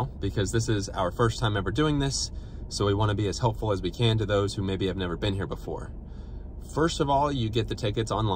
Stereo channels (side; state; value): both; identical; correlation 1.00